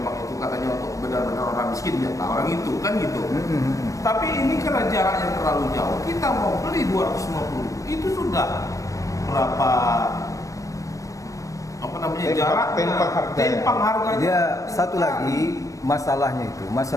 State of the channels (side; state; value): right; late; 0.16 ms